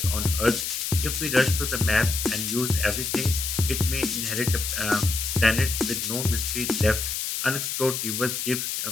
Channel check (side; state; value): left; noise; hiss, 3 dB below the sound